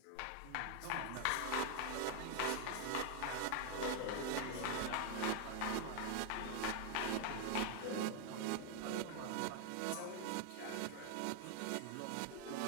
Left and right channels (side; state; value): both; different; correlation 0.01